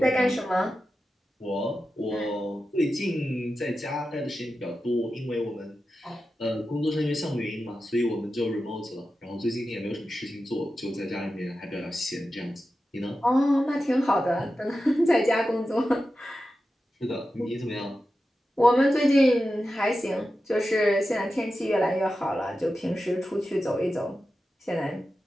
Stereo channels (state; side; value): normal; both; correlation 0.92